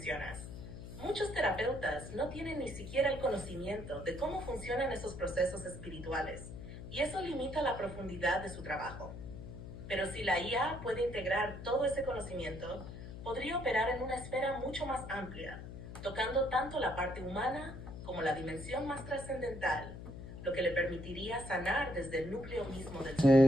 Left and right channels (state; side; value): noise; left; hum, 11 dB below the sound